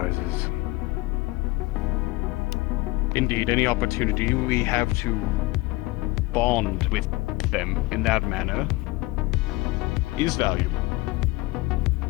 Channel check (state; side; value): quieter; right; 21.4 dB